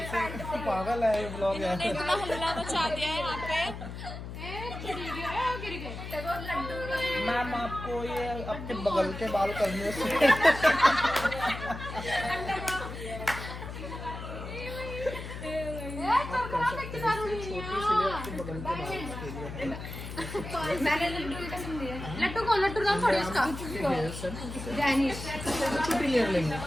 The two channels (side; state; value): left; noise; hum, 9 dB below the sound